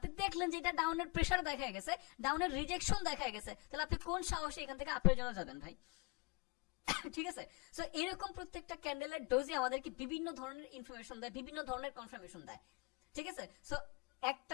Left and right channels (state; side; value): quieter; right; 27.3 dB